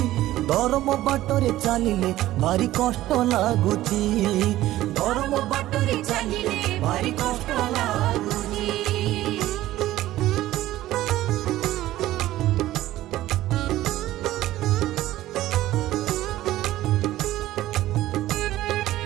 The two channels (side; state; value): left; quieter; 15.1 dB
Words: धर्म बाटरे चलिले भारी कष्ट लगुची। धर्म बाटरे चलिले भारी कष्ट लगुची।